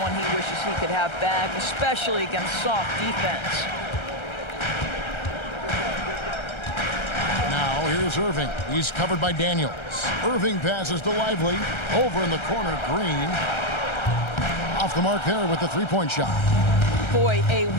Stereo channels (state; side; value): late; right; 1.3 ms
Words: he wishes he could have back, especially against soft defense. Now here's Irving. He's covered by Daniels. Irving passes to Lively. Over in the corner, Green. Off the mark there with the three-point shot. Boy, a